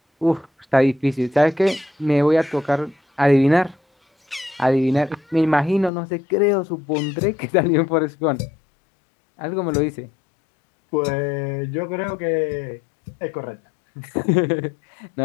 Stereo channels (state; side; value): drops out; right; at 5.9 s